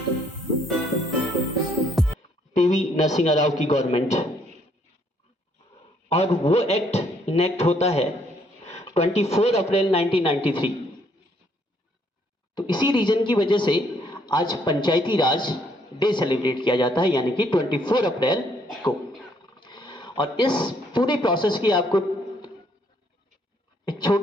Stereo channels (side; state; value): both; normal; correlation 0.68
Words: Narasimha Rao की government, और वो एक्ट इनेक्ट होता है 24 अप्रैल 1993। तो इसी रीजन की वजह से आज पंचायती राज डे सेलिब्रेट किया जाता है, यानी कि 24 अप्रैल को। और इस पूरे प्रोसेस की आपको एक